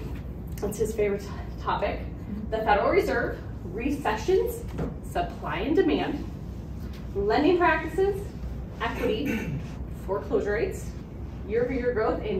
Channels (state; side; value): identical; both; correlation 1.00